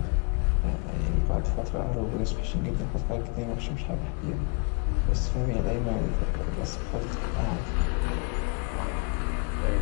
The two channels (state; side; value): quieter; right; 33.6 dB